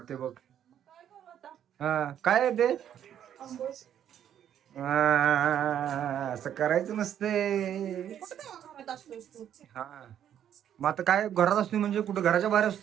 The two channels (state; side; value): quieter; left; 10.0 dB